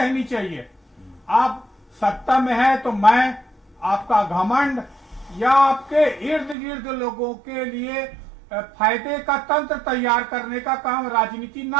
चाहिए। आप सत्ता में है तो मैं, आपका घमंड या आपके इर्द गिर्द लोगों के लिए फायदे का तंत्र तैयार करने का काम राजनीति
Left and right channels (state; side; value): drops out; left; at 6.6 s